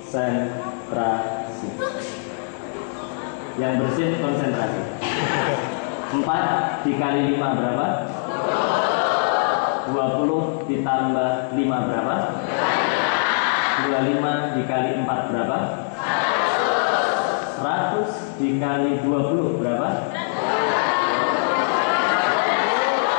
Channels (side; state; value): right; silent; 64 dB below the other